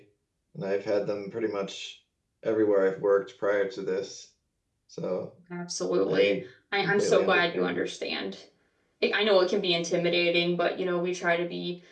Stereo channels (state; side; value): identical; both; correlation 1.00